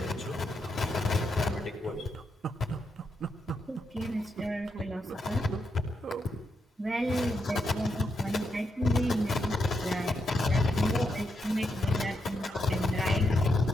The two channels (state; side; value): normal; both; correlation 0.82